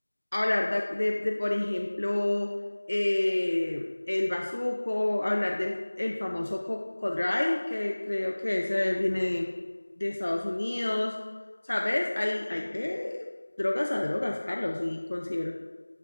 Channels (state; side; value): inverted; both; correlation -1.00